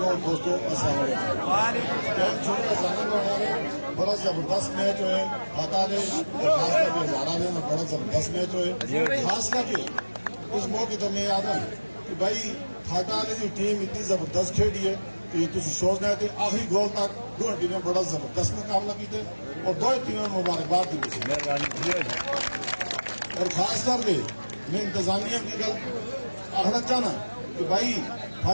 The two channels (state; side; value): inverted; both; correlation -1.00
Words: दोस्तों बड़ा जबरदस्त मैच है फटा ने हजारा ने बड़ा जबरदस्त मैच है। खास करके उस मौके तो मैं याद है कि भाई फटा ने की टीम इतनी जबरदस्त खेली है कि तुम सोचना है कि आखिरी गोल तक दो टीमें बड़ा जबरदस्त मुकाबला किए और दो टीमें मुबारकबाद दी। और खास करके मैं इंतजामिया की गल आखना चाहना कि भाई